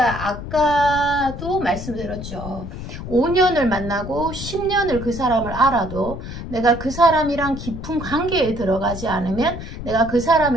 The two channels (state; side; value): noise; left; rumble, 9 dB below the sound